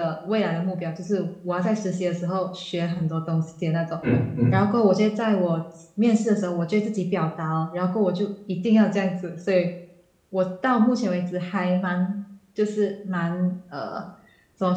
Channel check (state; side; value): identical; both; correlation 1.00